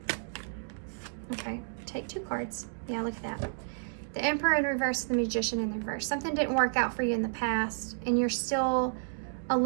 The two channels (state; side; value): silent; left; digital silence